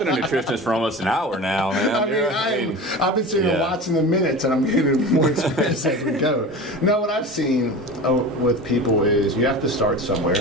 nutritionist for almost an hour now, man. I've been sitting and watching the minutes, and I'm getting more experience as we go. No, what I've seen with people is you have to start somewhere.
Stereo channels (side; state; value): both; normal; correlation 0.32